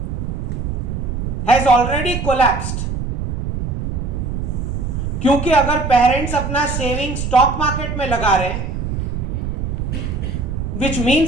has already collapsed. क्योंकि अगर पेरेंट्स अपना सेविंग स्टॉक मार्केट में लगा रहे हैं, which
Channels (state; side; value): noise; right; rumble, 3 dB below the sound